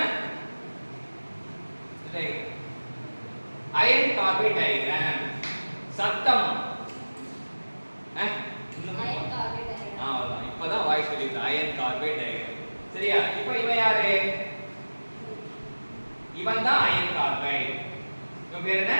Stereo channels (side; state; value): both; inverted; correlation -1.00